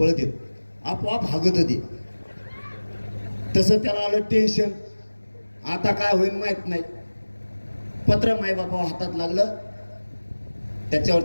येत, आपोआप हागत होती. तसं त्याला आलं टेन्शन. आता काय होईल माहित नाही. पत्र मायबापा हातात लागलं.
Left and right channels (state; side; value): inverted; both; correlation -1.00